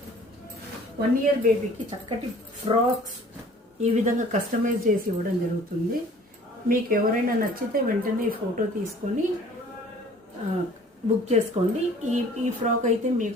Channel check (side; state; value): both; normal; correlation 0.51